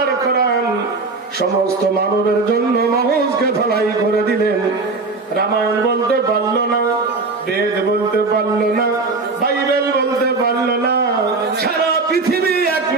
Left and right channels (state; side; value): quieter; left; 3.9 dB